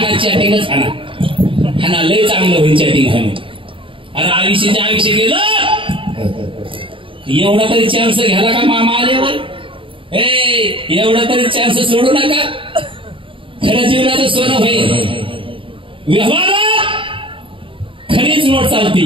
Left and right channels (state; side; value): late; left; 0.25 ms